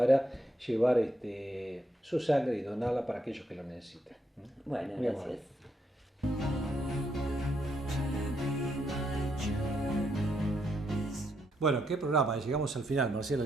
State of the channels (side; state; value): both; normal; correlation 0.78